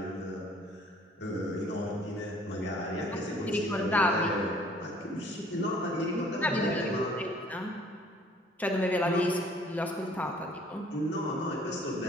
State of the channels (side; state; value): both; normal; correlation 0.57